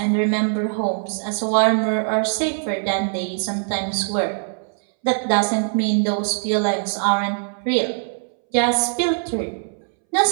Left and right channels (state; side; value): silent; left; 64 dB below the other